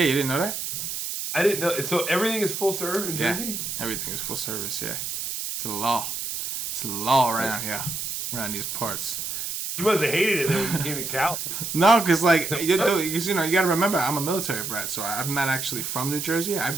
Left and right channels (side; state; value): right; noise; hiss, 4 dB below the sound